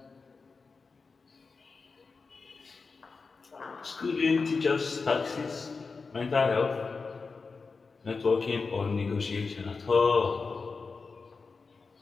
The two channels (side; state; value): right; quieter; 4.5 dB